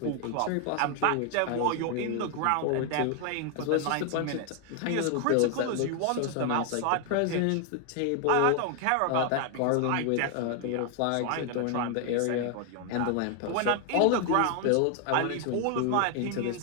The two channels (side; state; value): both; different; correlation 0.00